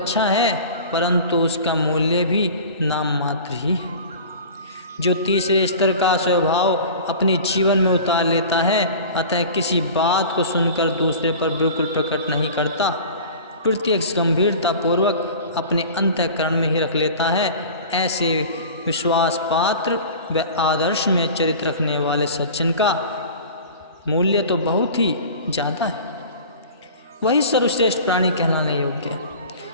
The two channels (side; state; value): both; inverted; correlation -0.38